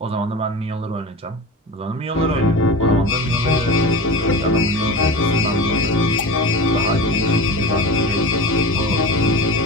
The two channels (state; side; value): normal; both; correlation 0.30